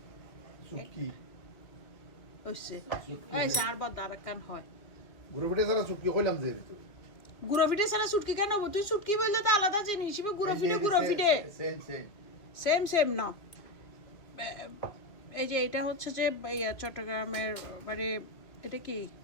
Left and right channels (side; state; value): right; late; 2.3 ms